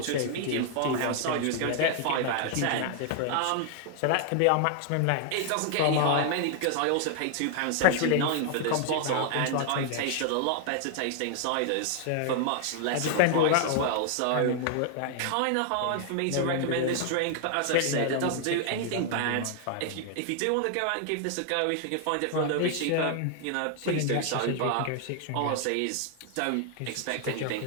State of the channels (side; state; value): both; different; correlation 0.00